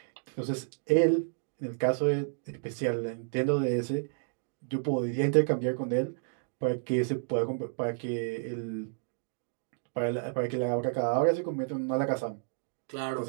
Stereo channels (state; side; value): silent; left; digital silence